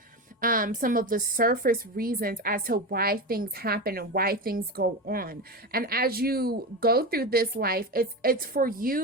some of the surface reasons as to why things happen and why things go on. And as you go through this life, it's for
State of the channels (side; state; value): both; normal; correlation 0.20